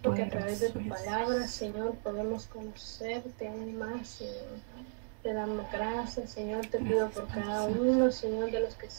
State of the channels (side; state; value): left; silent; 54 dB below the other